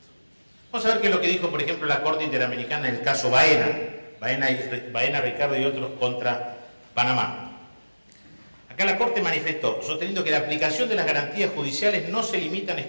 Vamos a ver qué es lo que dijo, por ejemplo, la Corte Interamericana en el caso Baena, Ricardo y otros contra Panamá. Acá la Corte manifestó, sosteniendo que la aplicación de las garantías judiciales no se limitan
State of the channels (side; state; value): both; inverted; correlation -1.00